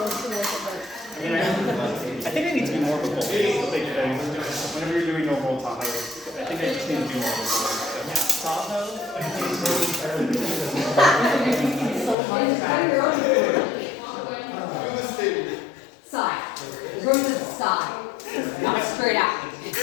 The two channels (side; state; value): right; drops out; at 12.2 s